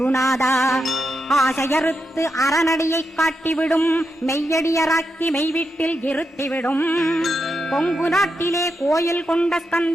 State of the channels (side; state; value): both; normal; correlation 0.86